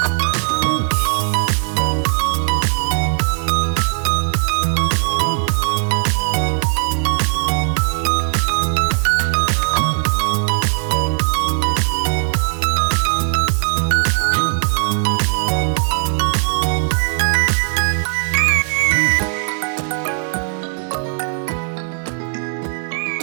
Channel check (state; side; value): silent; left; 67 dB below the other